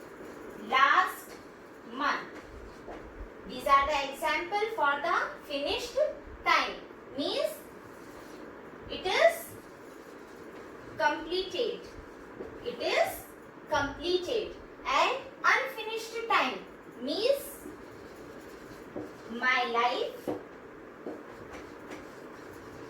last month. These are the example for the finished time. Means it is completed. It is completed. And unfinished time means my life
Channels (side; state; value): both; identical; correlation 1.00